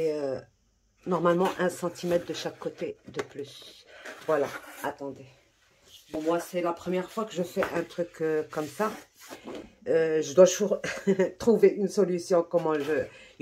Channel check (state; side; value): identical; both; correlation 1.00